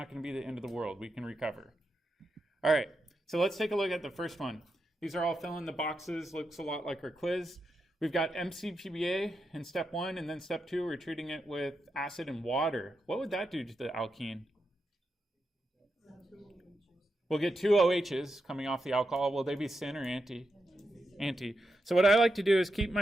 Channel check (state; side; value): normal; both; correlation 0.86